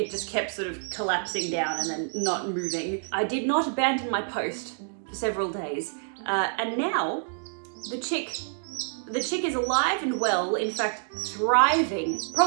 just kept sort of collapsing down and then not moving. I did not abandon my post for several days. And now the chick is alive and well, in fact, thriving.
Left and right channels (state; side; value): silent; left; digital silence